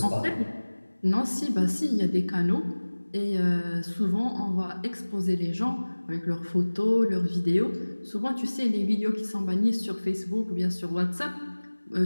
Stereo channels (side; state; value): both; inverted; correlation -1.00